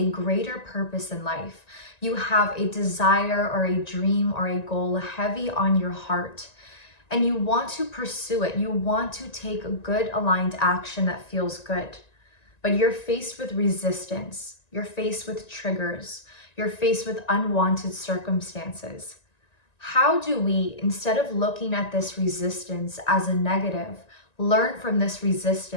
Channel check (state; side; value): late; right; 1.9 ms